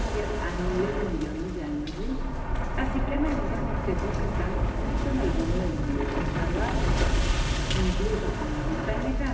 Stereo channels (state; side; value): identical; both; correlation 1.00